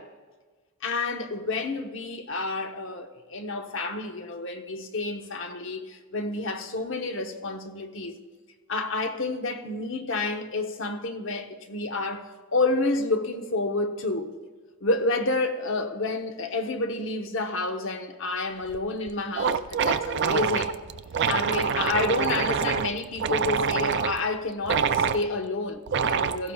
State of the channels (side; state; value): both; normal; correlation -0.12